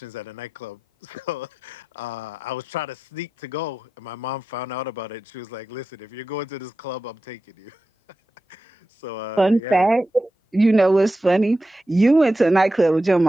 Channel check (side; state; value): both; normal; correlation 0.91